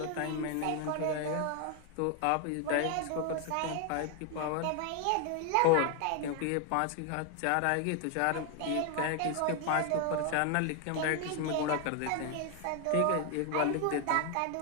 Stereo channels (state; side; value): different; both; correlation 0.01